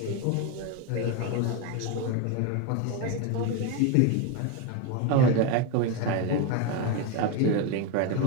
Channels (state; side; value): different; both; correlation 0.03